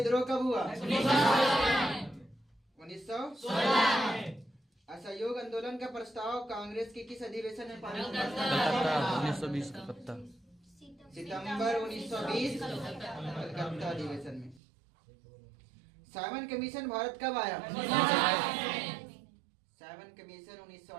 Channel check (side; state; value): left; drops out; at 14.6 s